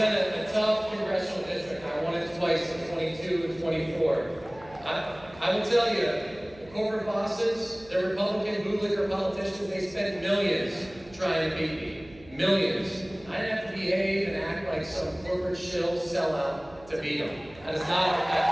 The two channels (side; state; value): right; noise; hum, 22 dB below the sound